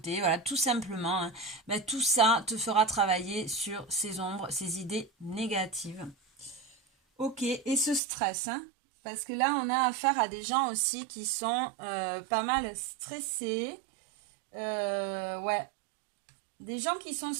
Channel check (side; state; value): left; drops out; at 8.0 s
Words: voilà, tout simplement, hein. Tout ça te fera travailler sur ces ombres, ces idées négatives. Ok, et ce stress, hein, parce que là, on a affaire à des gens aussi qui sont pas mal stressés. Ouais, des gens qui sont